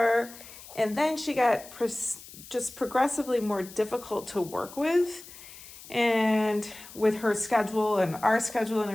And then she got just progressively more difficult to work with, and with her schedule and our schedule and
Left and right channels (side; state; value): left; noise; hiss, 17 dB below the sound